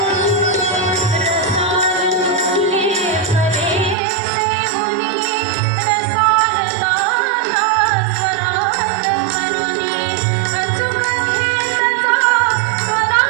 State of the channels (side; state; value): left; drops out; at 4.0 s